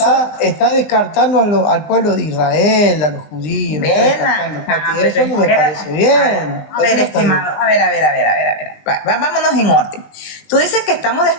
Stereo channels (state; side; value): late; right; 20 ms